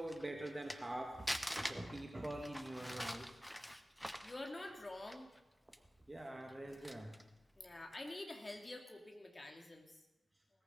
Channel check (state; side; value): normal; both; correlation 0.97